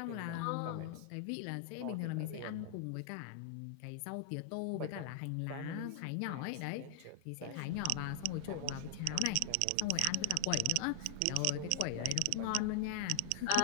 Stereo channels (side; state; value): both; different; correlation 0.00